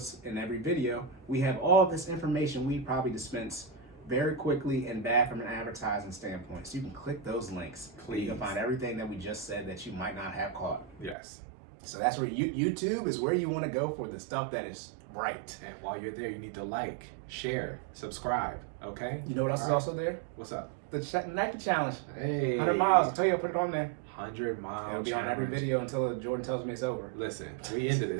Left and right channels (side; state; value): left; drops out; at 11.2 s